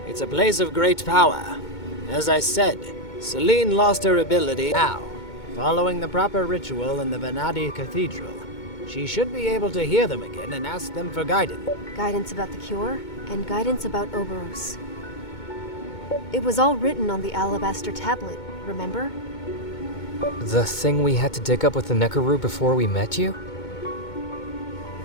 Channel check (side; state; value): right; late; 2.2 ms